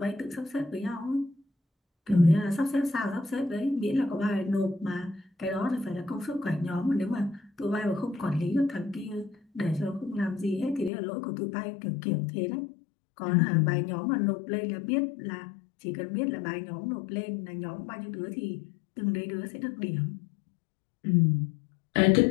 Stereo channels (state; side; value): drops out; right; at 10.9 s